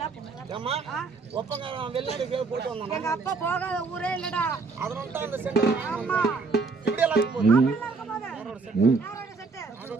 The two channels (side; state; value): left; quieter; 4.3 dB